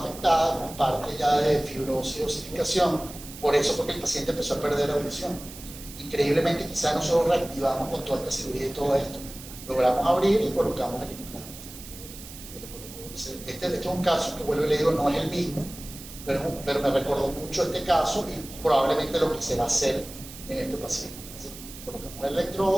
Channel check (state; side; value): noise; right; hiss, 15 dB below the sound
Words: afectada con parte ya de fibrosis y osificación, por eso fue que el paciente empezó a perder la audición. Increíblemente, quizás nosotros reactivamos con toda esta cirugía y todo esto, logramos abrir y colocamos el implante. Este es un caso que, vuelvo y le digo, no es el mismo, pero me recordó mucho este caso y probablemente lo que se va a hacer en este paciente. Entonces, colocamos el